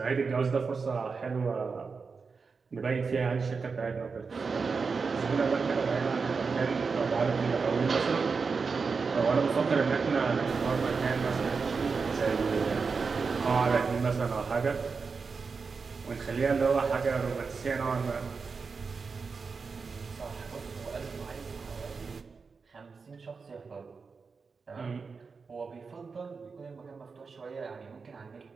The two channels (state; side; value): quieter; left; 4.9 dB